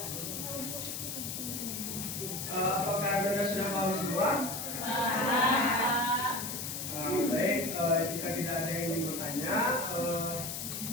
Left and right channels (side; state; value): left; noise; hiss, 5 dB below the sound